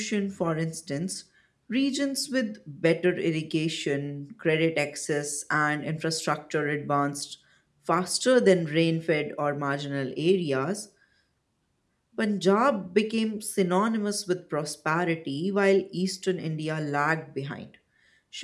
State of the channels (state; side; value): identical; both; correlation 1.00